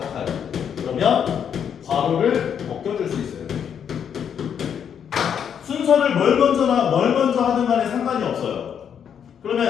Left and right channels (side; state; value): right; quieter; 8.1 dB